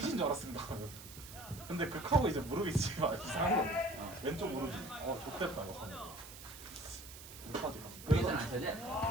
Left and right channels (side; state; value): right; noise; hiss, 14 dB below the sound